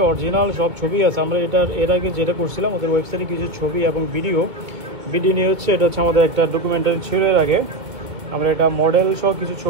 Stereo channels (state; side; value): late; left; 2.2 ms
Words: অরিজিনাল সব ছবি আছে। আমরা এর আগে যেটা করছিলাম ওদের ওয়েবসাইটে কিছু ছবি এবং ভিডিও নিয়ে হচ্ছে, এটা হচ্ছে আমাদের একটা ডকুমেন্টারি ছিল এর আগে। আমরা এটা মডেল সহ কিছু